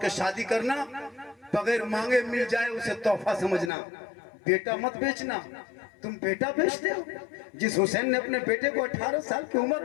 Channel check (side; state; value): right; drops out; at 3.7 s